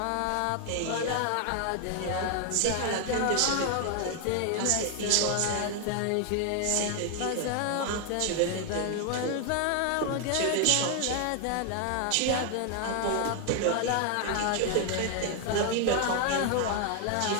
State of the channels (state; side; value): different; both; correlation 0.00